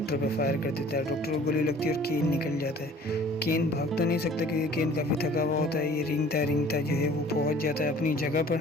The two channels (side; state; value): both; normal; correlation 0.50